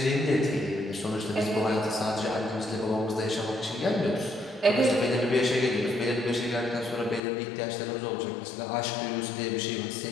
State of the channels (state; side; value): drops out; right; at 7.2 s